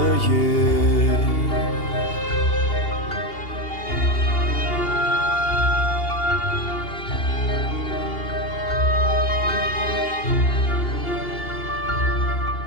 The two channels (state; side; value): late; right; 2.8 ms